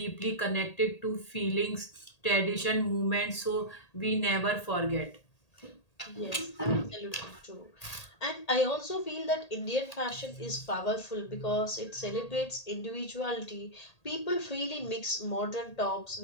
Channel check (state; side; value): late; right; 1.8 ms